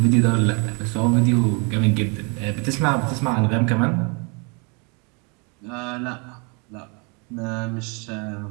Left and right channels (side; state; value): left; quieter; 32.9 dB